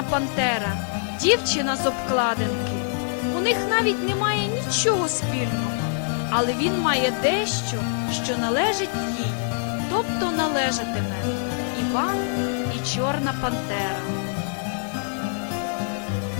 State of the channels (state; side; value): silent; right; digital silence